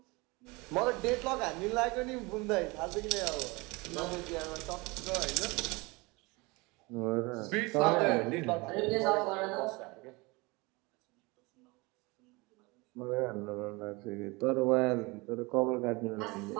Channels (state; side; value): quieter; left; 25.1 dB